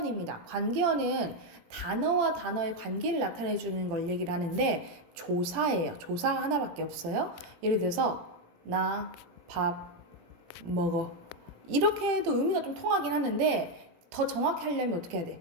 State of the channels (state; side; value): late; left; 18 ms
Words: 관계어는 단어와 단어의 관계를 나타내주는 걸 얘기를 하는데 조사예요. 조사 하나밖에 없어요. 예를 들어서 나 밥 먹어. 이렇게 해도 의미가 좀 통하긴 하는데 더 정확히 하려면 어떻게 해야